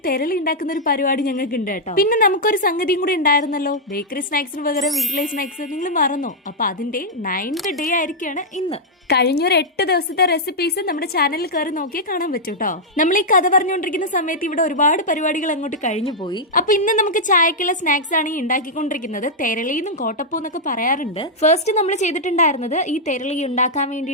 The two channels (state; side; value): normal; both; correlation -0.06